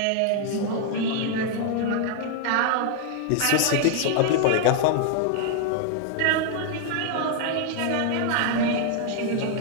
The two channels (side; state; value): both; different; correlation 0.00